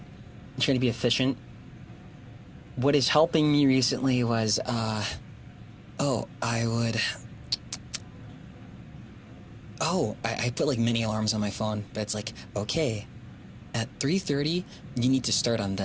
I'm trying to be efficient. What is helping me recently was, I put like mini alarms on my phone, but it's like, okay, at 3:30, you need to start on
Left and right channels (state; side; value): identical; both; correlation 1.00